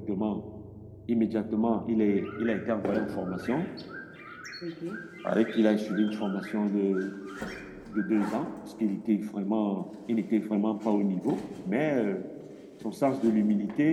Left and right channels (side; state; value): both; identical; correlation 1.00